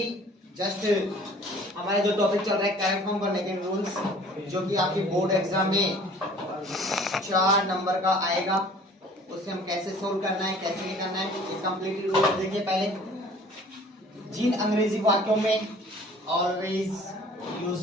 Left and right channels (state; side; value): normal; both; correlation 0.51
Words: जस्ट हमारे जो टॉपिक चल रहा है करेक्ट फॉर्म करने के रूल्स, जो कि आपकी बोर्ड एग्जाम में 4 नंबर का आएगा, उसे हम कैसे सोल्व करना है, कैसे नहीं करना है, ये कंप्लीट रूल्स देखिए। पहले जिन अंग्रेजी वाक्यों में always,